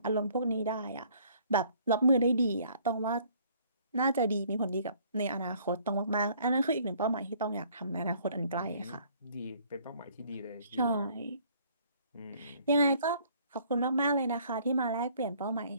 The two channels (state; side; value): inverted; both; correlation -0.59